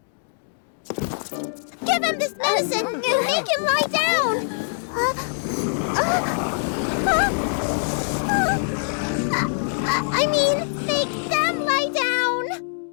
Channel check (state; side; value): silent; right; digital silence